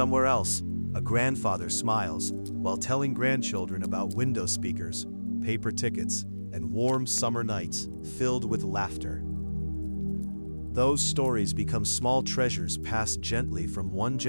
else, a grandfather smiles while telling grandchildren about window speakers, paper tickets, and warm summer nights filled with laughter. Those stories become small treasures passed gently from one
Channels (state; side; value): inverted; both; correlation -1.00